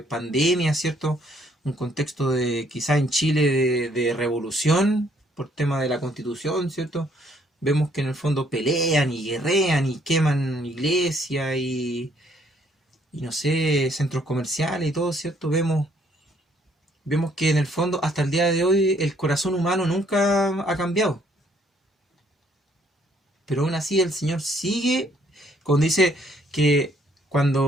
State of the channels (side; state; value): both; normal; correlation 0.66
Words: ¿cierto?, un contexto de quizá en Chile de revolución por tema de la Constitución, ¿cierto? Vemos que en el fondo pelean y guerrean y queman iglesias y no sé, centros comerciales y todo, ¿cierto? Vemos que en el fondo hasta el día de hoy el corazón humano nunca ha cambiado. Pero aún así el Señor sigue, cuando dice que